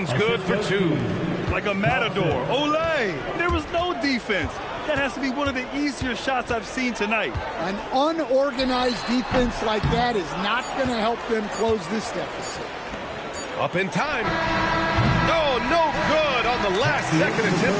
good for 2. Like a matador. Olay! There was no defense. That has to be one of the easier shots I've seen tonight. An unorganized defense like that is not going to help them close this deficit. Up in time. Oh, no good on the last second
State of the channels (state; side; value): identical; both; correlation 1.00